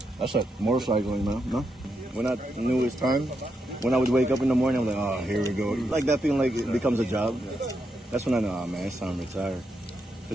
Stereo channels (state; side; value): normal; both; correlation 0.83